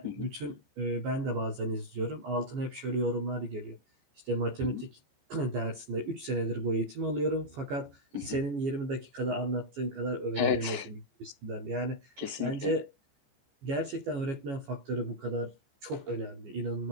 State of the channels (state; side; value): late; left; 14 ms